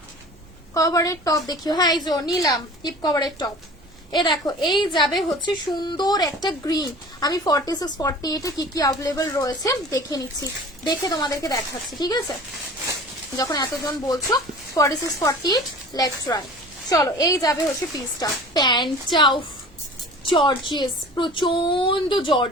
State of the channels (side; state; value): right; noise; hum, 27 dB below the sound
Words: কভারের টপ দেখিও। হ্যাঁ এই যে নিলাম হিপ কভারের টপ। এ দেখো, এই যাবে হচ্ছে সুন্দর একটা গ্রিন। আমি 46 48 এ কি কি अवेलेबल রয়েছে দেখে নিচ্ছি, দেখে তোমাদেরকে দেখাচ্ছি। ঠিক আছে, যখন এতজন বলছো 46 48, লেটস ট্রাই। চলো, এই যাবে হচ্ছে পিসটা। প্যান্টটা জর্জিয়াস, প্রচন্ড